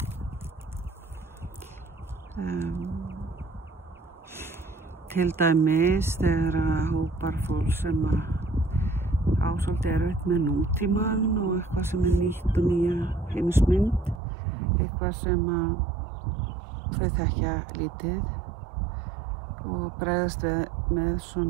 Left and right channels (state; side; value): drops out; left; at 14.2 s